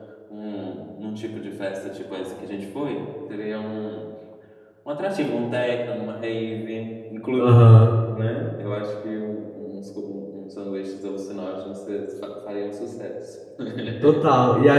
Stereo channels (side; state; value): both; identical; correlation 1.00